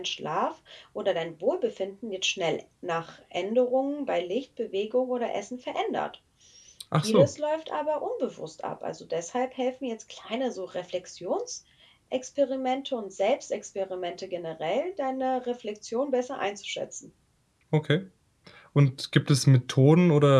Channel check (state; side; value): identical; both; correlation 1.00